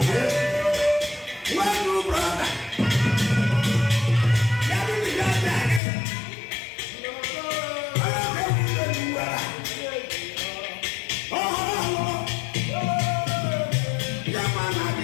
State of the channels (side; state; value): right; drops out; at 5.8 s